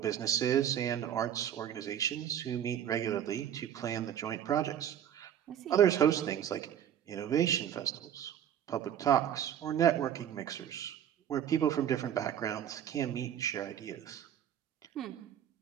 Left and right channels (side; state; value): left; quieter; 9.9 dB